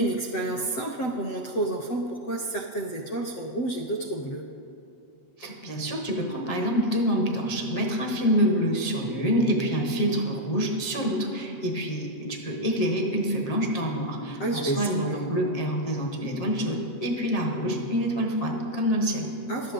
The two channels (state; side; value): late; right; 7.9 ms